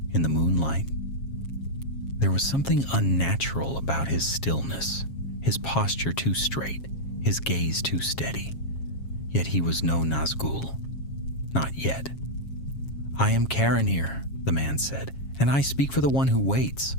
in the moonlight. There was something unnatural about his stillness, his posture too straight, his gaze too steady. Yet he was no Nazgûl. Not yet. "I am Caranir," the man said, "and I speak for the one who waits."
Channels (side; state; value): right; late; 7.4 ms